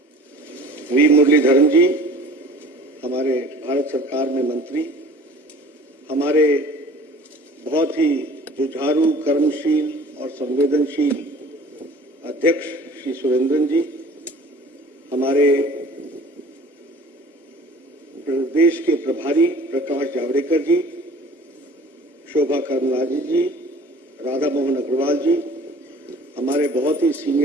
वी मुरलीधरन जी, हमारे भारत सरकार में मंत्री, हमारे बहुत ही जुझारू, कर्मशील और संवेदनशील अध्यक्ष श्री सुरेंद्रन जी, हमारे प्रदेश के प्रभारी प्रकाश जावड़ेकर जी, शोभा करंदलाजे जी, राधा मोहन अग्रवाल जी, हमारे बहुत ही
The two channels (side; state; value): both; normal; correlation 0.47